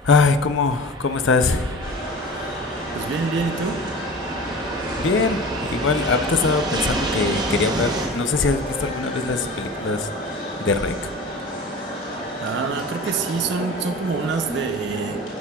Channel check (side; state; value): both; normal; correlation 0.36